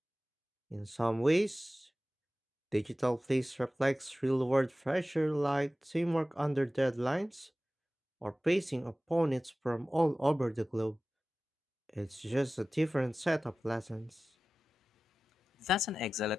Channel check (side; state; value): both; normal; correlation 0.96